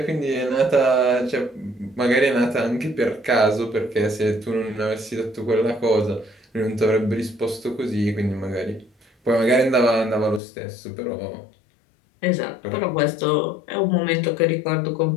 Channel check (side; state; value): right; drops out; at 10.4 s